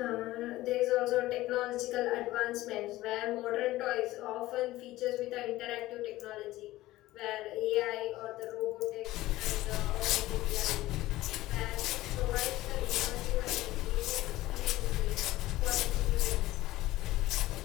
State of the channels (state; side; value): quieter; right; 17.0 dB